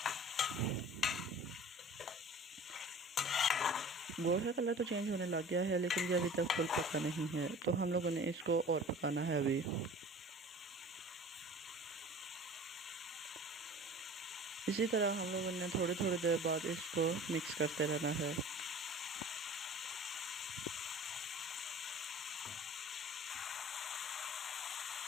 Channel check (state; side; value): normal; both; correlation 0.43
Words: गोश्त का कलर तो चेंज होने लग गया है, लेकिन ये अभी तक फुल पका नहीं है, तो हम लोगों ने इसको और पकाना है अभी। इसी तरह हम लोगों ने थोड़ी थोड़ी देर बाद इसको मिक्स करते रहना है।